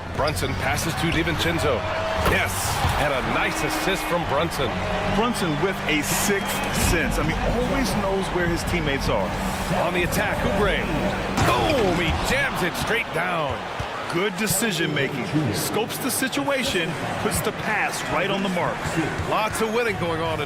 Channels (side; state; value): both; identical; correlation 1.00